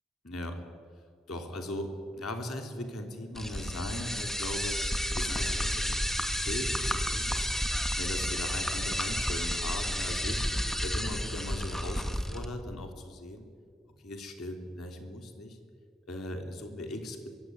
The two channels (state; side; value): normal; both; correlation 0.80